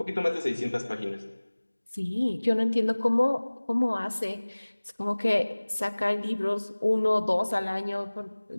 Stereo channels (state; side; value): inverted; both; correlation -1.00